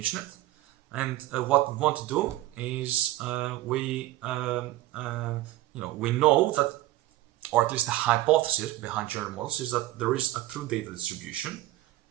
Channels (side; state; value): left; quieter; 16.5 dB